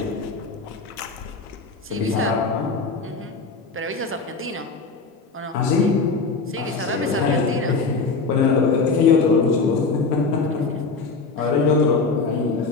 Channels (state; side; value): quieter; right; 4.2 dB